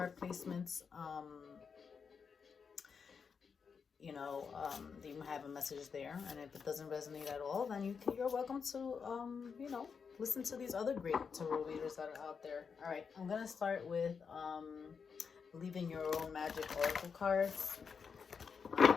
placements. You have a message there, and if it doesn't resonate at all, then you're welcome to listen to these other great tarot readers that are out there. All right, I'm gonna start with Believing Your Own Magic Oracle cards.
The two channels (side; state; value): right; quieter; 6.0 dB